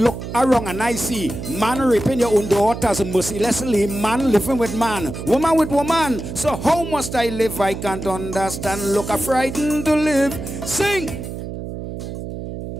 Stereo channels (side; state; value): right; noise; hum, 8 dB below the sound